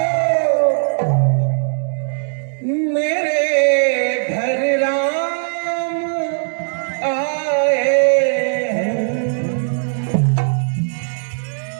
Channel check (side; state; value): left; silent; digital silence